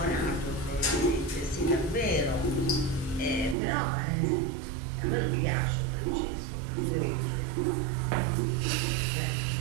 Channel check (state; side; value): drops out; left; at 3.6 s